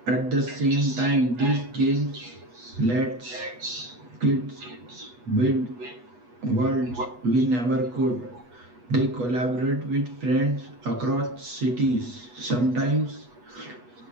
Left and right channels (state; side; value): late; left; 8.2 ms